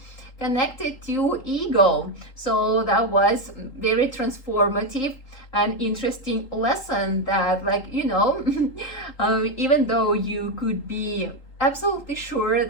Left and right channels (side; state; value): right; late; 3.8 ms